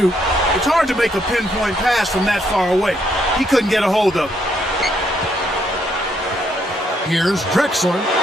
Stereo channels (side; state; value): both; normal; correlation 0.73